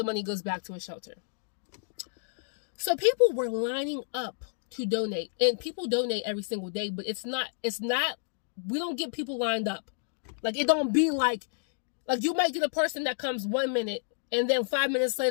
money goes back to a shelter. So people were lining up to donate, and people donate every single day, but it's not we don't get people lined up. It don't be you might get a person that comes 1 minute, and then 5 minutes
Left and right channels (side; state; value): right; silent; digital silence